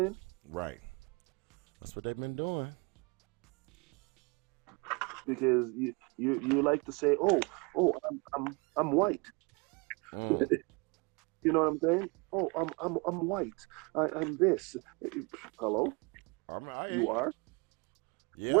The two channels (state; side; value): quieter; left; 29.5 dB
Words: Right. That's what they've been doing. Because you like to say, oh, I'm white. You know what I'm saying? Oh, I'm white. I'm this. Hello? You are? Yeah.